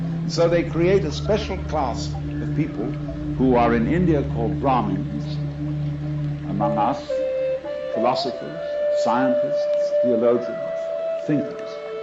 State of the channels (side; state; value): both; identical; correlation 1.00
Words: So they create a special class of people who are in India called Brahmins, among us, philosophers, scientists, theologians, thinkers.